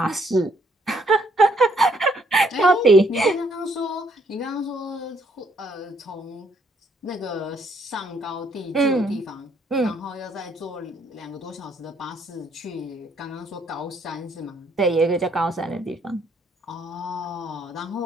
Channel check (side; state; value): both; normal; correlation 0.68